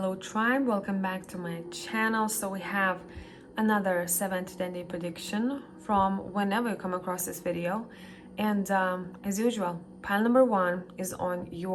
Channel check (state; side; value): identical; both; correlation 1.00